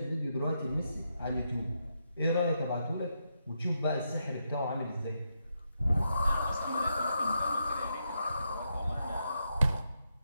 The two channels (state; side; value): inverted; both; correlation -0.82